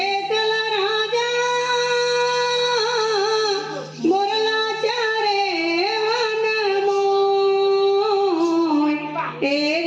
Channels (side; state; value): both; identical; correlation 1.00